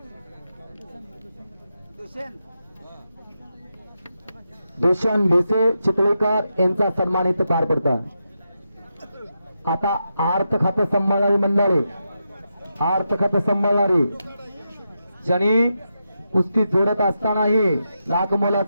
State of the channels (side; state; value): both; inverted; correlation -0.86